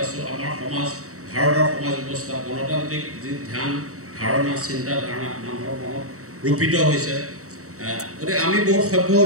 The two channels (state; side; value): late; left; 0.65 ms